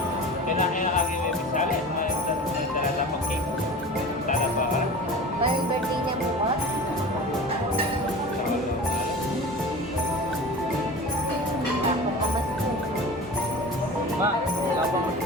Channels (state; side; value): normal; both; correlation 0.35